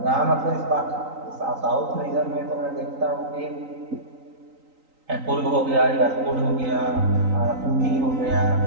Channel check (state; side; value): late; left; 3.9 ms